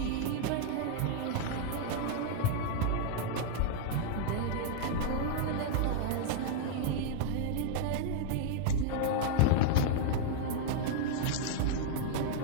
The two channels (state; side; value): different; both; correlation -0.01